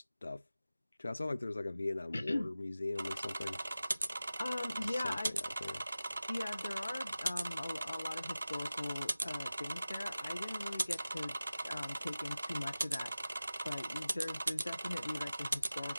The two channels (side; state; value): both; inverted; correlation -0.95